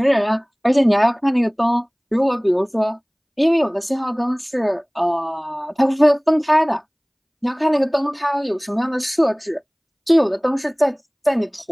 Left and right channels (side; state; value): both; identical; correlation 1.00